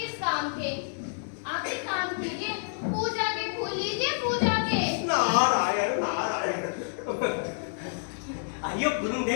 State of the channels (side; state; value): right; silent; digital silence